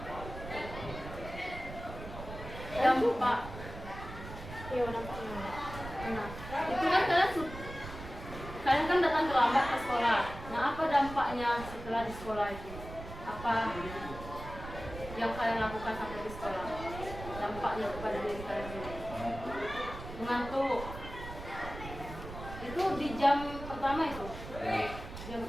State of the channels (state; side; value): noise; right; rumble, 11 dB below the sound